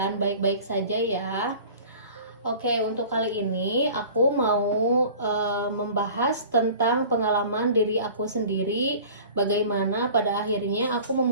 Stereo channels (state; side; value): inverted; both; correlation -0.43